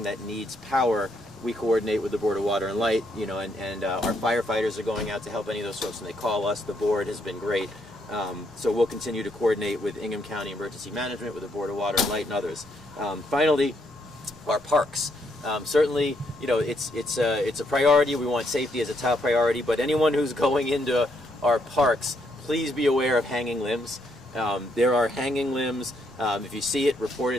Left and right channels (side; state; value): both; normal; correlation 0.74